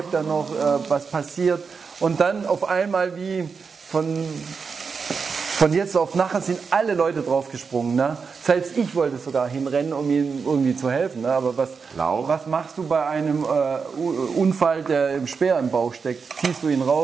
er noch, was passiert. Und dann auf einmal wie von jetzt auf nachher sind alle Leute draufgesprungen. Ne? Selbst ich wollte sogar hinrennen, um ihm irgendwie zu helfen. Ne? Aber was machst du bei einem Unfall, der im Speer im Bauch steckt? Ziehst du ihn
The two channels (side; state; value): left; quieter; 5.4 dB